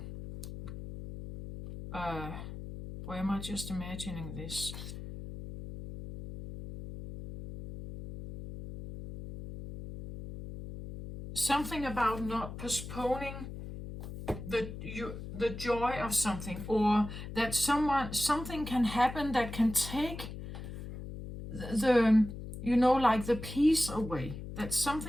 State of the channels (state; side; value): noise; left; hum, 10 dB below the sound